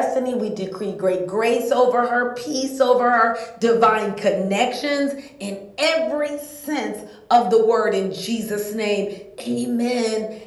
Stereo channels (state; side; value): identical; both; correlation 1.00